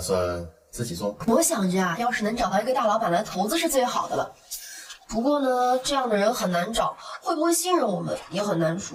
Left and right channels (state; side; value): identical; both; correlation 1.00